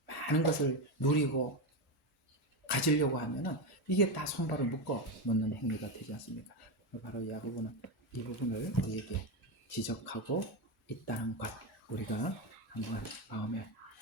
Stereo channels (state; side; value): normal; both; correlation 0.13